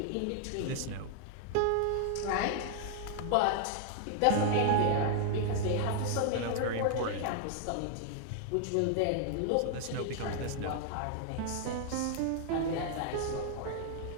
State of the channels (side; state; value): both; different; correlation 0.00